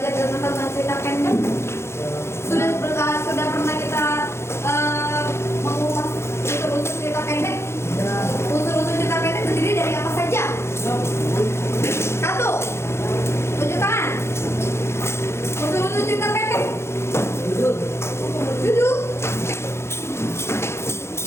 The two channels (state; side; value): late; right; 0.13 ms